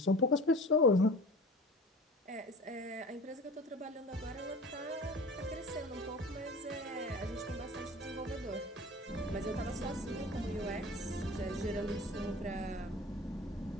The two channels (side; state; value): both; normal; correlation 0.38